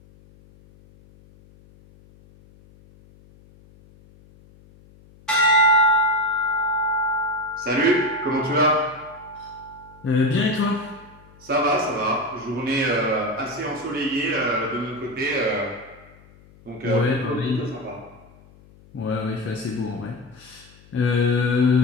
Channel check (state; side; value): noise; left; hum, 26 dB below the sound